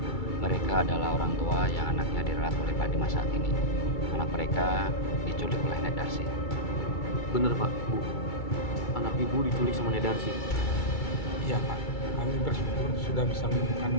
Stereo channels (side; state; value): right; late; 2.3 ms